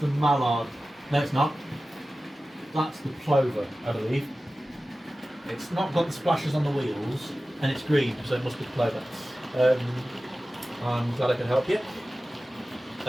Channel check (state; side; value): normal; both; correlation 0.96